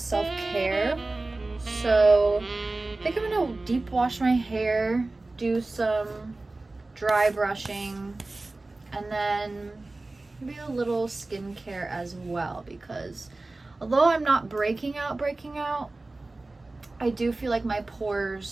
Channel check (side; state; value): left; quieter; 3.1 dB